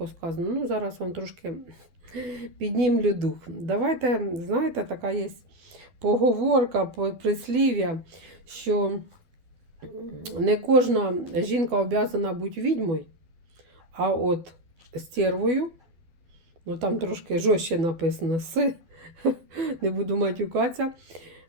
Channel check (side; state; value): left; late; 12 ms